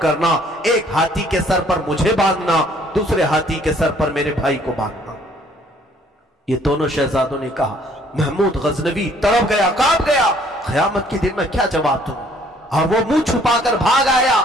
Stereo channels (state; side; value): normal; both; correlation 0.60